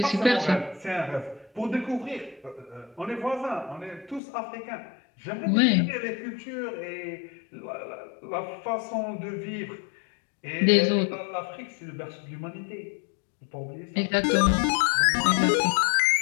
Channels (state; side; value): drops out; right; at 4.2 s